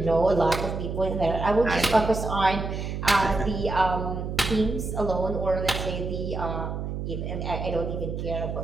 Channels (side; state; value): right; noise; hum, 4 dB below the sound